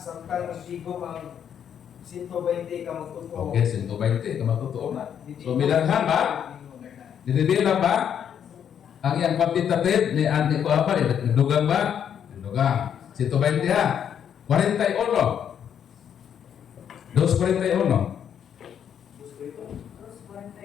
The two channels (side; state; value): right; quieter; 8.7 dB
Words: magsigom ang 120 ka magtuto. Okay, 120. Kamatotoo na. So, milanghan ba? Dinibila ba? Ang iyang quantitative ni Andy ko apa? Dugang ba? Dugang. 120 ha. 41. 241.